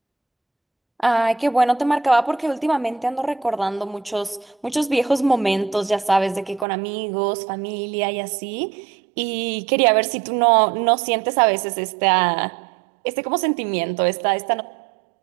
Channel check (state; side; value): drops out; left; at 6.7 s